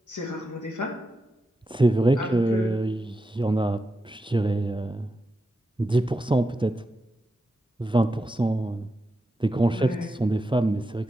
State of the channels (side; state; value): both; normal; correlation 0.88